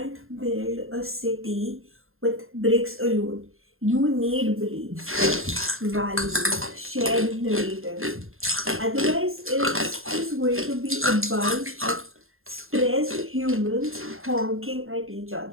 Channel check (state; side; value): late; left; 0.61 ms